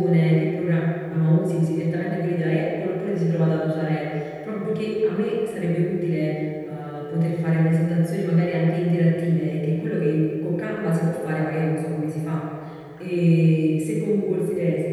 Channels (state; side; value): identical; both; correlation 1.00